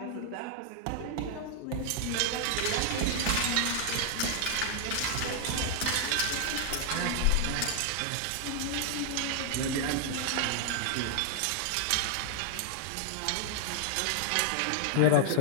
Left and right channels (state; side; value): different; both; correlation 0.00